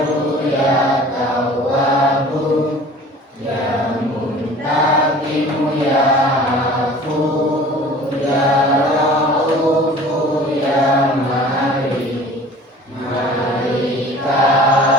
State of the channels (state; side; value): normal; both; correlation 0.45